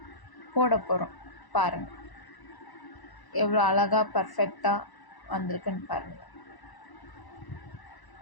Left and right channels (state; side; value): late; right; 1.0 ms